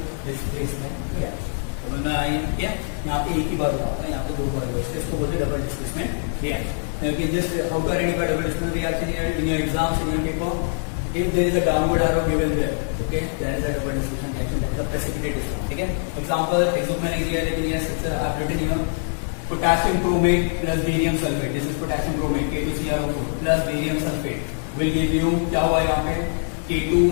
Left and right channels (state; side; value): silent; right; digital silence